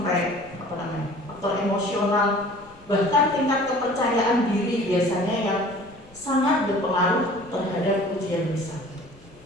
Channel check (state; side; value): noise; left; rumble, 26 dB below the sound